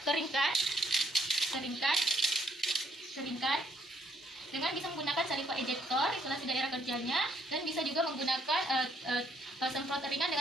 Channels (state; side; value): normal; both; correlation 0.69